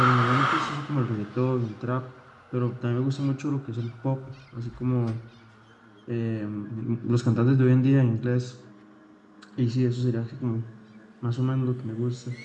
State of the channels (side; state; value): both; identical; correlation 1.00